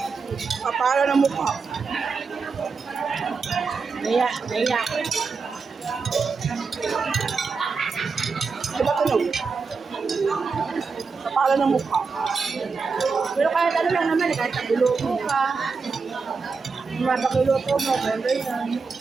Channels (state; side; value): quieter; left; 4.8 dB